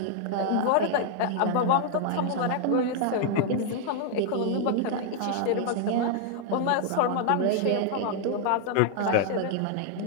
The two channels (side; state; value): both; different; correlation 0.00